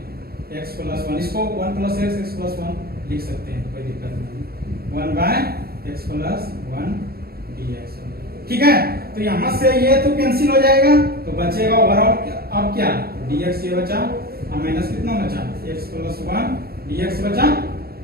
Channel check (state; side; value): late; left; 0.45 ms